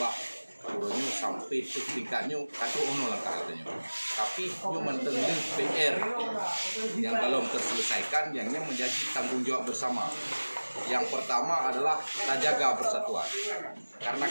urunya sampai ke tingkatnya kata langkah katanya tapi nyu mentengah PR yang belum terselesaikan yang menjadi tanggung jawab bersama. Yang pertama adalah tak jaga persatuan karena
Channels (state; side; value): inverted; both; correlation -1.00